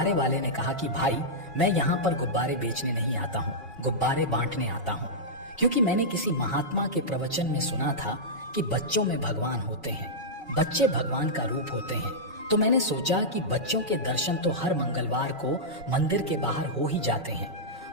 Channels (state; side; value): normal; both; correlation -0.10